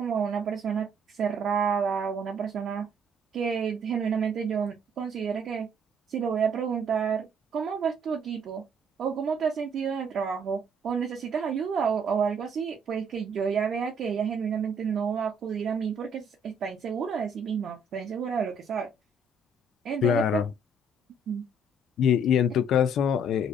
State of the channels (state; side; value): normal; both; correlation 0.63